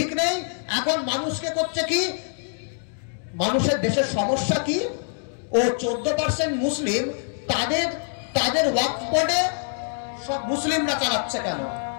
নেই। এখন মানুষকে করছে কি? মানুষের দেশের সমস্যা কি? ও 14% মুসলিম, তাদের ওয়াকফ বোর্ডে সব মুসলিমরা চালাচ্ছে কেন?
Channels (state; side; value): silent; right; 62 dB below the other